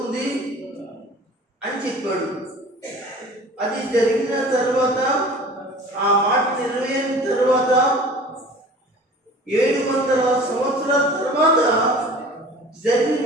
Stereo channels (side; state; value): both; normal; correlation 0.43